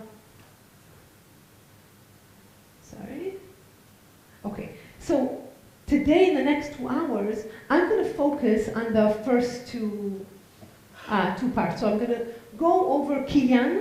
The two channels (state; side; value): identical; both; correlation 1.00